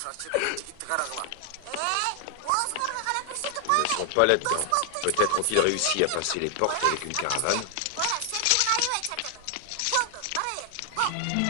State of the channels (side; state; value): both; different; correlation 0.00